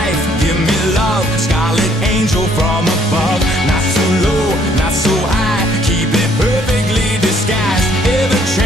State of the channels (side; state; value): both; normal; correlation 0.64